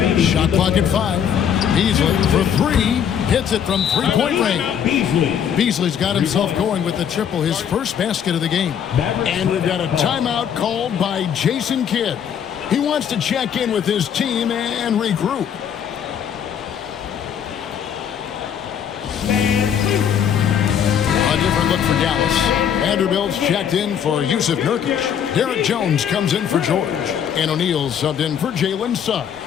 Shot clock at 5. Beasley for 3. Hits it from three-point range. Beasley's got himself going with the triple, his first basket of the game. And we've got a timeout called by Jason Kidd. He wants to check in with his team and regroup. A different look for Dallas. Vanderbilt's checked in for Yusuf Nurkic. Derek Jones comes in for George. And O'Neal subbed in for Jalen Suggs.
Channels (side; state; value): right; quieter; 8.5 dB